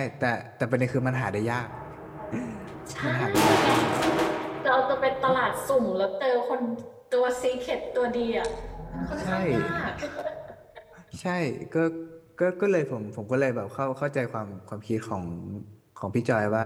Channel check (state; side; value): identical; both; correlation 1.00